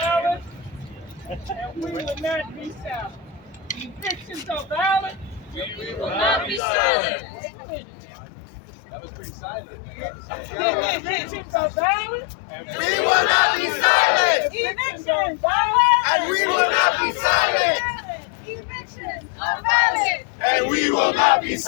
and we will not be silent. Evictions are violent, We will not be silent. That was pretty silent. Evictions are violent, We will not be silent. evictions are violent, And we will not be silent. Evictions are violent. And we will not be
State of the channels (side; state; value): right; drops out; at 6.6 s